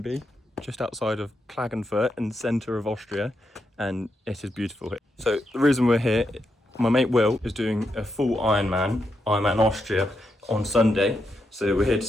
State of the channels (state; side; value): normal; both; correlation 0.83